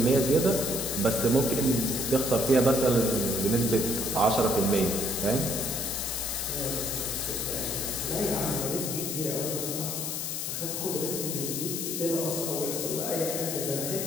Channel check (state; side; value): noise; left; hiss, 3 dB below the sound